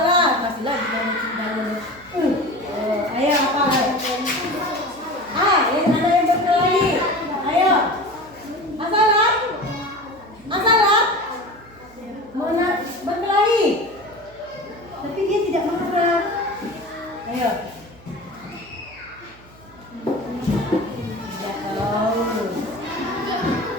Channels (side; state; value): right; noise; hum, 24 dB below the sound